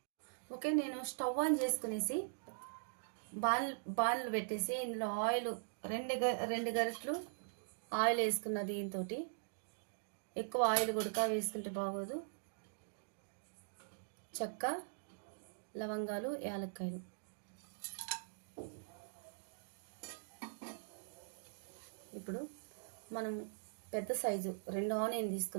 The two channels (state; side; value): silent; left; digital silence